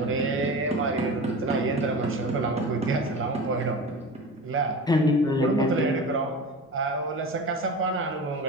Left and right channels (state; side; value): normal; both; correlation 0.32